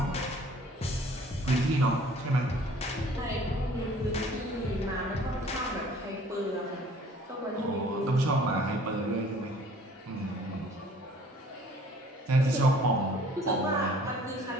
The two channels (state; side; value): normal; both; correlation 0.53